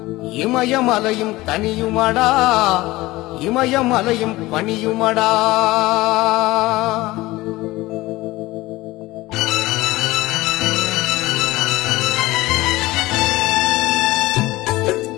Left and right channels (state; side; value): quieter; right; 19.2 dB